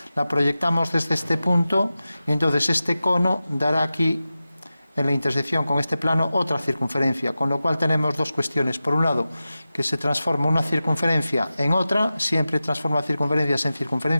la proyectamos desde este punto y entonces este cono dará aquí en la intersección con este plano otra circunferencia, con lo cual tenemos dos cuestiones. Por un lado, que se transforma una circunferencia en otra, siempre transforma circunferencias en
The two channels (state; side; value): inverted; both; correlation -0.94